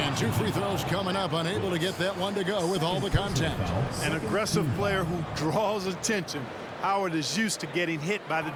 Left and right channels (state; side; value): identical; both; correlation 1.00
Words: 2 free throws coming up. Unable to get that one to go with all the contact. An aggressive player who draws attention. Howard is used to getting hit by the